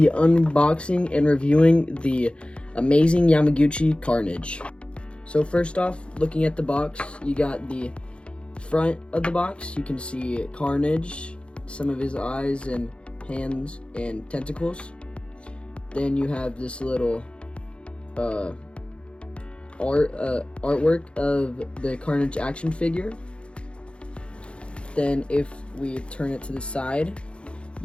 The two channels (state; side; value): late; right; 0.058 ms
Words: unboxing and reviewing the amazing Yamaguchi Carnage. So first off, looking at the box, you got the front of the box. You can see Carnage, some of his eyes and hands and tentacles. Then you have this little artwork of the Carnage action figure. Then if we turn it to the side,